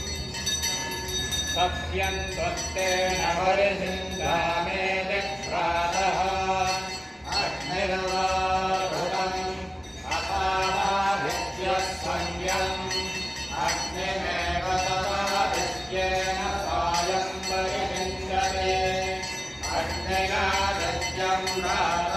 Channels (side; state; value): both; identical; correlation 1.00